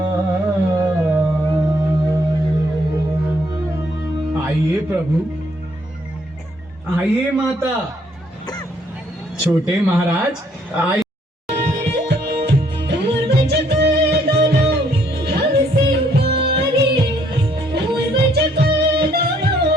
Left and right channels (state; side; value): normal; both; correlation 0.67